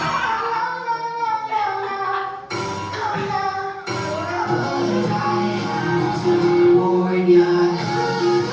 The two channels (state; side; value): identical; both; correlation 1.00